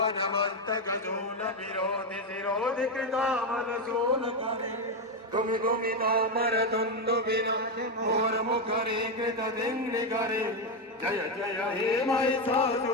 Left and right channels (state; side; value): normal; both; correlation 0.07